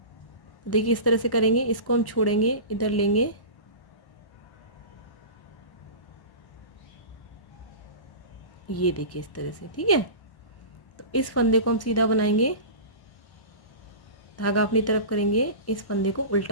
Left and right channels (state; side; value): late; right; 1.1 ms